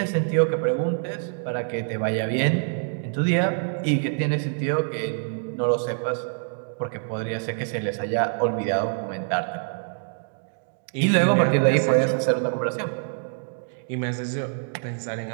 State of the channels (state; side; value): silent; left; 61 dB below the other